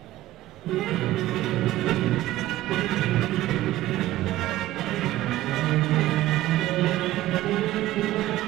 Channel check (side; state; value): left; quieter; 15.5 dB